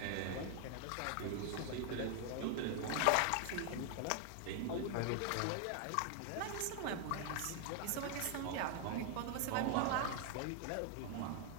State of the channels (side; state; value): both; different; correlation 0.00